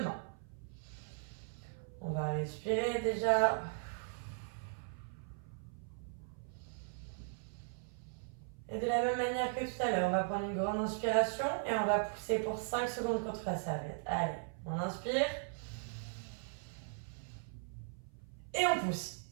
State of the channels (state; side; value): silent; left; 52 dB below the other